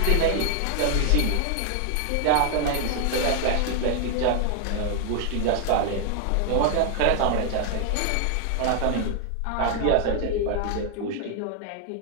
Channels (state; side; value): different; both; correlation 0.00